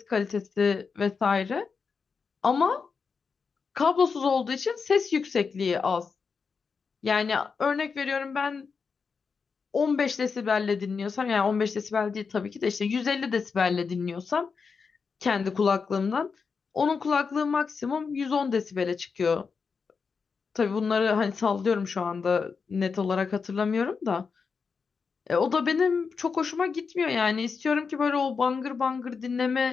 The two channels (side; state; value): right; quieter; 5.4 dB